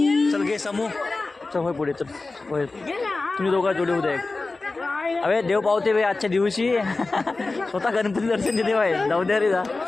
चल घे समूह चल होय पुढे चल होय तुम्ही दोघा जोडी उद्या एक. अरे देव पावते बे आजच्या दिवशी स्वतः गणपती दर्शन देते बाय जाऊ द्या रे जा.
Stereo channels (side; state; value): right; quieter; 3.5 dB